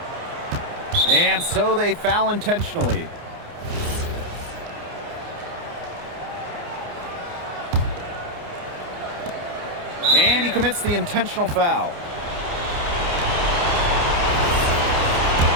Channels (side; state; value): left; late; 29 ms